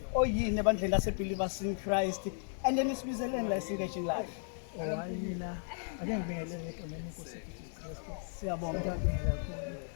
oyini ebandleni lase believers in Christ. And then isibizeleni la engaging live. Mina ake ngibingelele egameni lenkosi Jesus Christ. Siyabonga. Ngiyabingelela kakhulu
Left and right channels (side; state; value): right; silent; 54 dB below the other